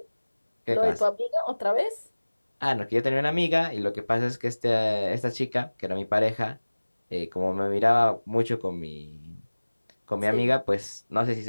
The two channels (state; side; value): inverted; both; correlation -1.00